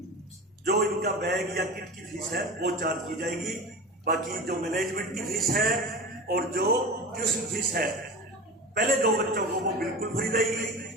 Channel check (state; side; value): normal; both; correlation 0.32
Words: जो इनका बैग या किट की फीस है वो चार्ज की जाएगी। बाकी जो मैनेजमेंट की फीस है और जो ट्यूशन फीस है पहले 2 बच्चों को वो बिल्कुल फ्री रहेगी